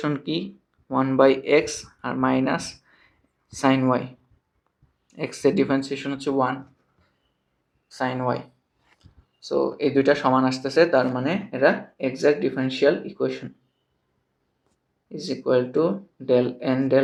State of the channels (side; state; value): both; identical; correlation 1.00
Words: কি 1 বাই x আর মাইনাস সাইন y, x এর ডিফারেন্সিয়েশন হচ্ছে 1 সাইন y। সো এই দুইটা সমান আসতেছে, তার মানে এটা exact differential equation is equal two del n